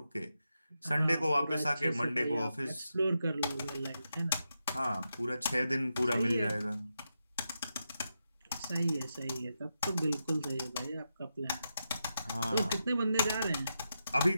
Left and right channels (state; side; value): inverted; both; correlation -0.87